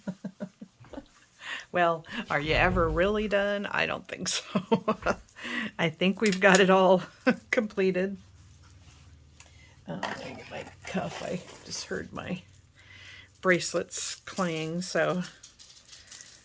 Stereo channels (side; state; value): both; identical; correlation 1.00